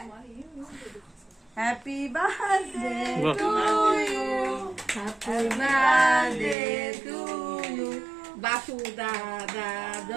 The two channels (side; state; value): left; drops out; at 6.6 s